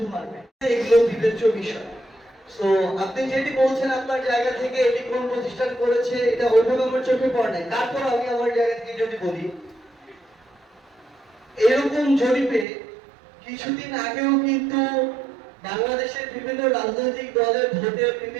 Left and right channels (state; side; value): drops out; left; at 12.7 s